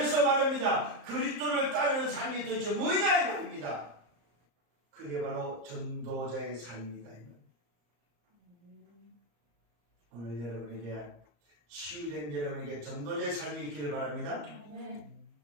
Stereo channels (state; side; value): late; left; 34 ms